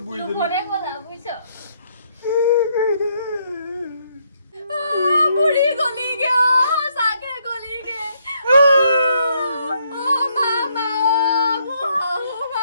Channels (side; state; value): both; inverted; correlation -0.73